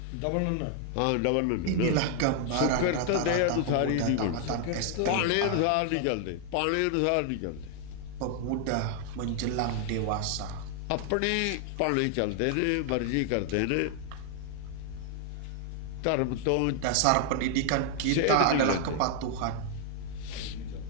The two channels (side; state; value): both; different; correlation 0.00